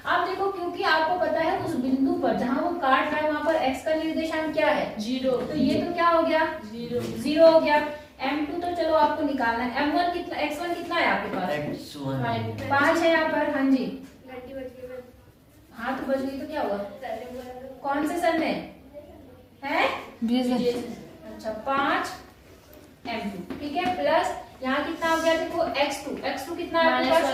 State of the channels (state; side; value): identical; both; correlation 1.00